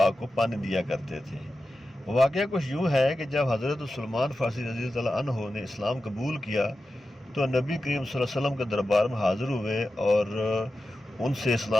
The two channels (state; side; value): normal; both; correlation 0.92